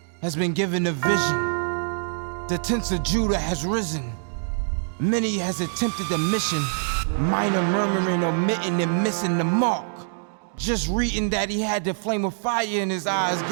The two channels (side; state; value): left; silent; digital silence